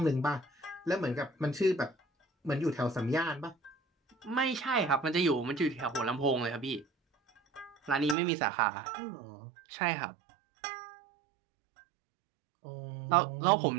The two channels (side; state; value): left; drops out; at 8.2 s